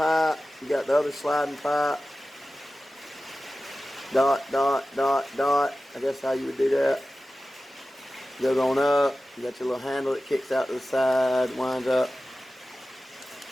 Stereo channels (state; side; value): normal; both; correlation 0.95